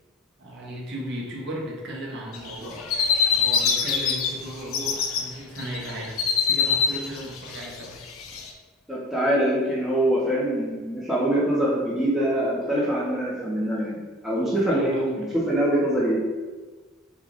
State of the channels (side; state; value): both; normal; correlation 0.35